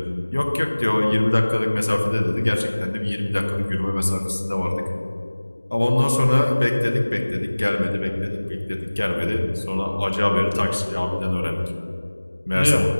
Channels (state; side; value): inverted; both; correlation -1.00